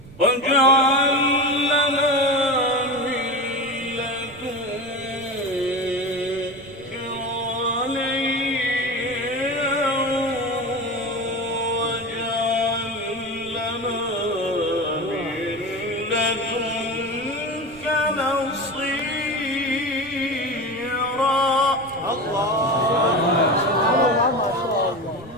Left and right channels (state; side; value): noise; right; rumble, 21 dB below the sound